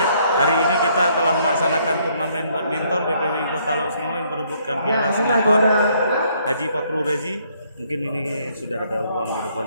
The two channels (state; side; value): inverted; both; correlation -0.67